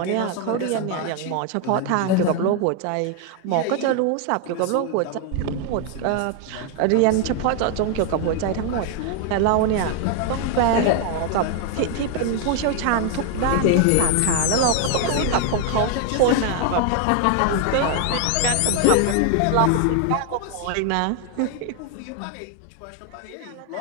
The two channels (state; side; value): different; both; correlation 0.00